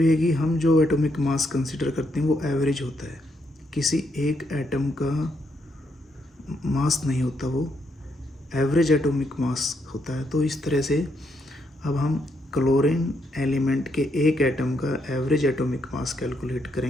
कि हम जो एटॉमिक मास कंसिडर करते हैं वो एवरेज होता है, किसी एक एटम का मास नहीं होता, वो एवरेज एटॉमिक मास होता है। तो इस तरह से अब हम क्लोरीन एलिमेंट के एक एटम का एवरेज एटॉमिक मास कैलकुलेट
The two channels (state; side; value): normal; both; correlation 0.77